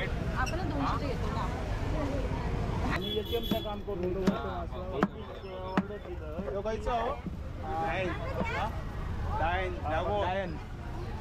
आपणच 200चे घेतो ना. आणि ATMचं काम करून दोघायचं हो डायन डायन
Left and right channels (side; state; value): both; identical; correlation 1.00